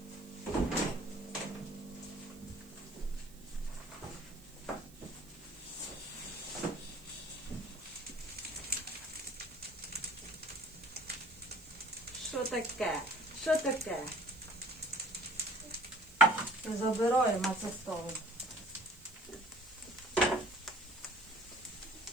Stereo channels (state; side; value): noise; right; hiss, 22 dB below the sound